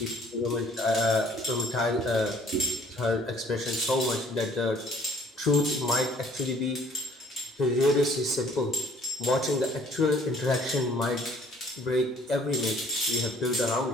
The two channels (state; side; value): normal; both; correlation 0.58